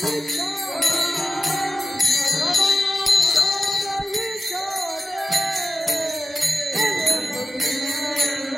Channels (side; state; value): both; normal; correlation 0.94